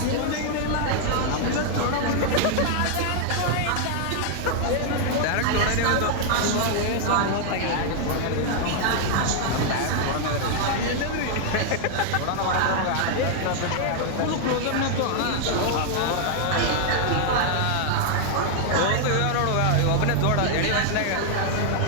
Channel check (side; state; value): both; different; correlation 0.00